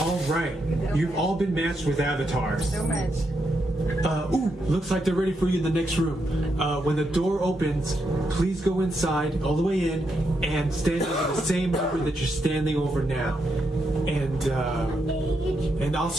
right, you've all been matched with avatars. Looks like they're ready for you in the next room. When the door opens, please go inside, all the way in, and stand over the same number that you're standing over now. And I'll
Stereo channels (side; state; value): both; normal; correlation 0.82